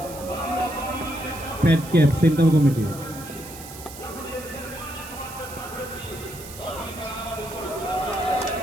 Fat cap central committee.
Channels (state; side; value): noise; right; hiss, 14 dB below the sound